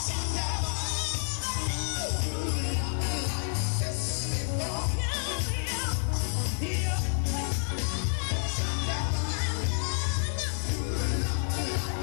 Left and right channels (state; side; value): silent; right; 58 dB below the other